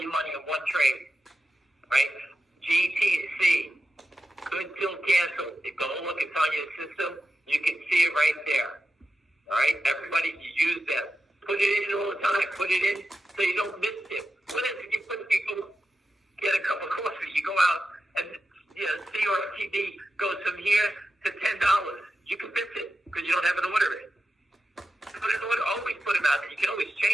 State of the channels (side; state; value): both; normal; correlation 0.91